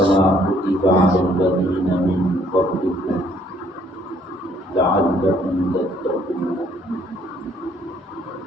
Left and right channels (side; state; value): both; normal; correlation 0.64